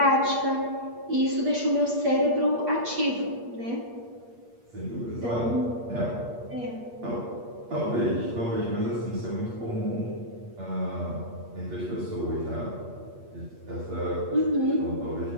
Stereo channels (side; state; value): left; late; 8.5 ms